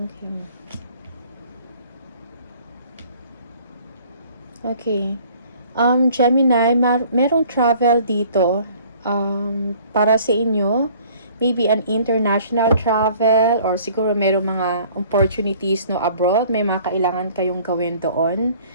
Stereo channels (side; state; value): both; inverted; correlation -0.54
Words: Okay. Gemini, merong travel dito para sa inyo. Maybe an international travel or siguro merong mga opportunities no abroad. May mga kailangan kayong gawin doon.